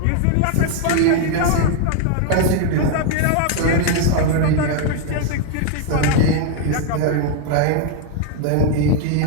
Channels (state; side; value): different; both; correlation 0.00